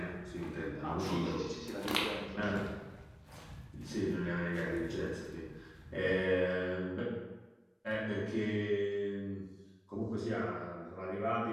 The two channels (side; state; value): both; identical; correlation 1.00